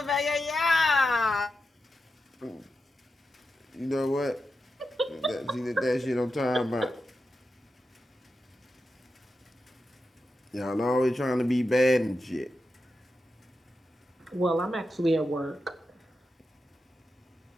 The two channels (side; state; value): both; normal; correlation 0.89